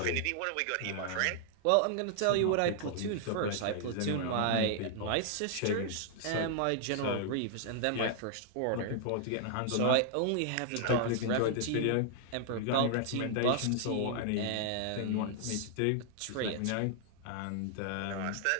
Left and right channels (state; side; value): different; both; correlation 0.00